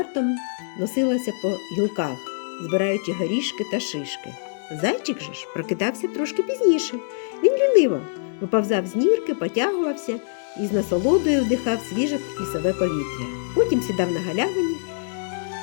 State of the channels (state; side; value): silent; right; digital silence